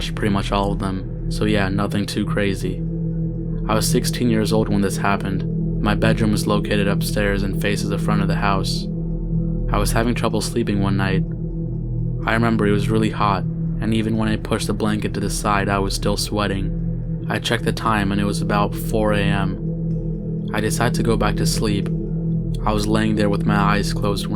pretty much all of them. So yeah, nothing too crazy. I was 16 years old when this happened. My bedroom was located upstairs and faces the front of the house. I was having trouble sleeping one night. I remember it was really hot, and even when I pushed the blanket to the side, I was still sweating. I checked the time and it was about 4 a.m. I decided to go back to sleep. I was laying there with my eyes closed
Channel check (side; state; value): both; identical; correlation 1.00